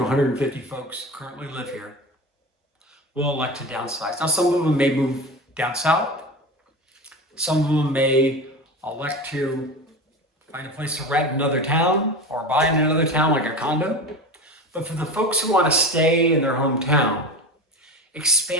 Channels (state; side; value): normal; both; correlation 0.28